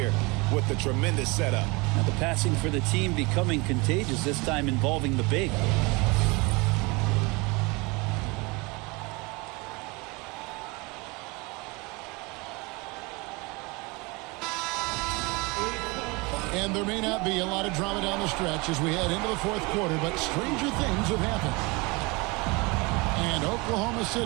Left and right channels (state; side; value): quieter; left; 26.4 dB